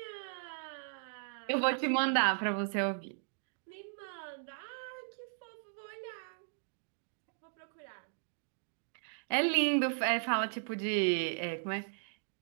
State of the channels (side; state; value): left; silent; digital silence